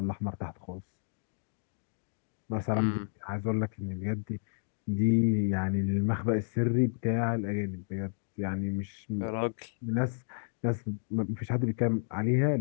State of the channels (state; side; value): silent; right; digital silence